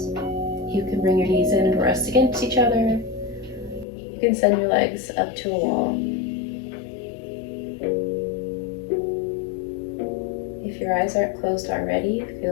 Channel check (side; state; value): right; drops out; at 3.9 s